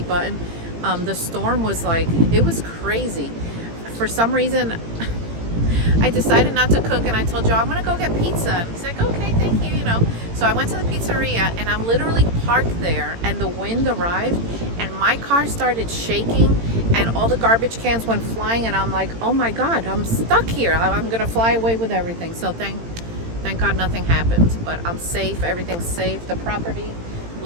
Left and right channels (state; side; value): late; left; 18 ms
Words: The storm was like, it was crazy. For some reason, I decided not to cook, and I told Joe I'm gonna go get pizza. And he's like, okay, thank you, you know. So I went to the pizzeria, and I'm literally parked there, and the wind arrived, and my car started shaking, and all the garbage cans went flying, and I'm like, oh my God, I'm stuck here. I'm gonna fly away with everything. So thank God nothing happened, but I'm safe. Everything's safe. The property